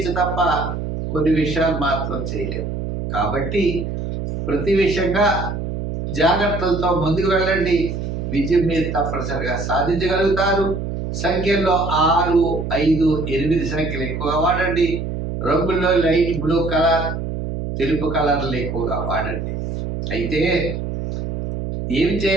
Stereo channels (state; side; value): noise; right; hum, 4 dB below the sound